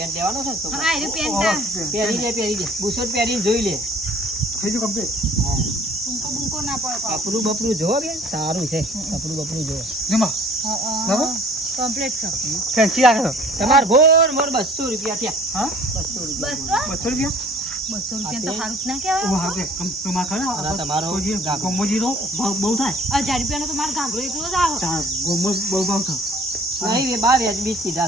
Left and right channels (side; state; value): both; normal; correlation 0.52